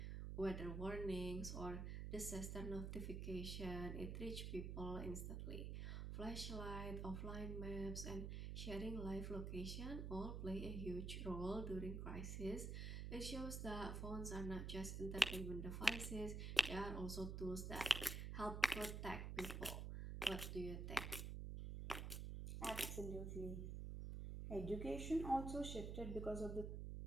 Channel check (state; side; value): noise; right; hum, 3 dB below the sound